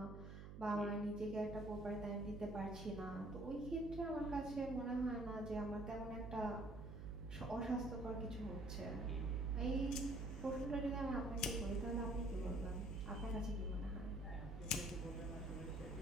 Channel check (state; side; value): noise; right; hum, 10 dB below the sound